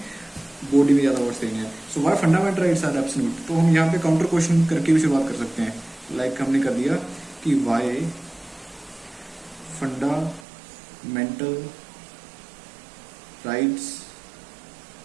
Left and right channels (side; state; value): left; drops out; at 10.5 s